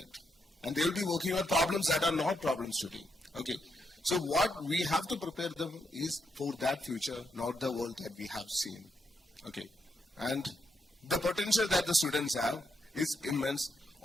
And they will be working on problems that are not problems today. Okay. So what we have to prepare them is for that future, not the world that we have seen. Okay. And the potential that the students have is immense.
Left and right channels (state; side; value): normal; both; correlation 0.81